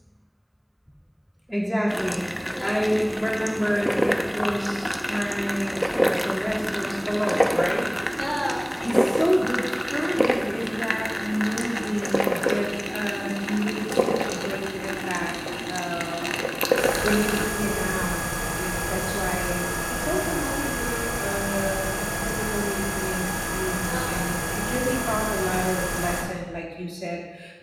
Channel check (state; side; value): identical; both; correlation 1.00